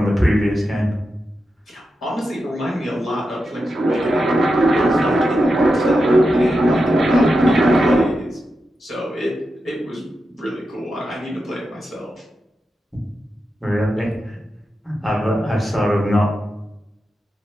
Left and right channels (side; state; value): both; normal; correlation 0.89